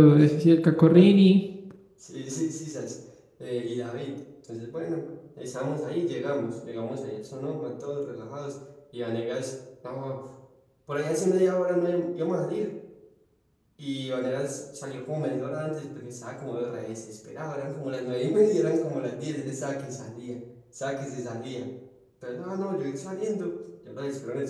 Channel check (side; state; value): both; identical; correlation 1.00